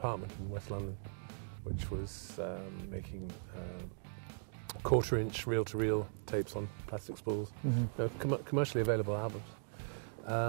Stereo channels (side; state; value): left; silent; digital silence